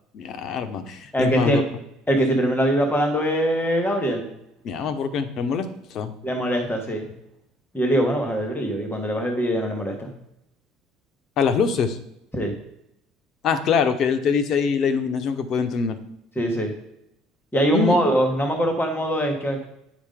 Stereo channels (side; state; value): both; normal; correlation 0.63